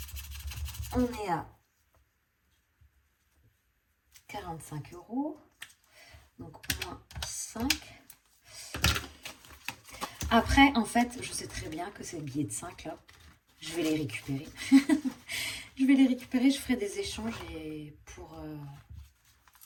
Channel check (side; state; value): both; identical; correlation 1.00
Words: On est à 45 euros. Donc, moins 5. Après, en fait, je sais très bien que ces billets de 5 là, je vais les récupérer. Je vais les récupérer, je ferai des échanges et pour...